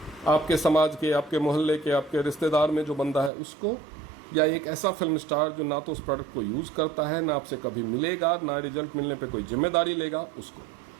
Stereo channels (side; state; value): left; drops out; at 3.3 s